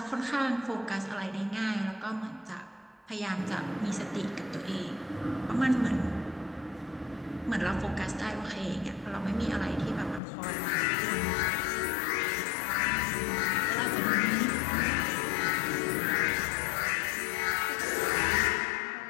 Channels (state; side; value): drops out; right; at 10.2 s